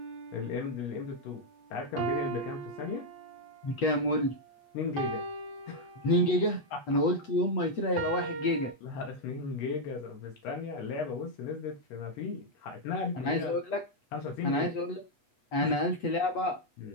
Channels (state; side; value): late; right; 8.2 ms